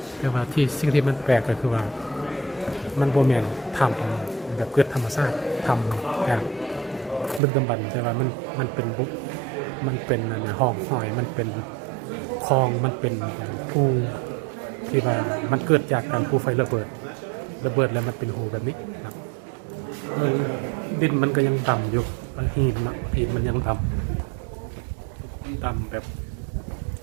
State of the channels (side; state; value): left; drops out; at 7.4 s